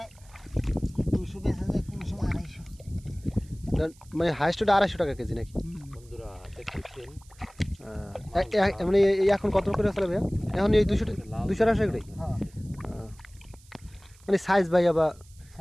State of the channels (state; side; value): noise; right; hiss, 27 dB below the sound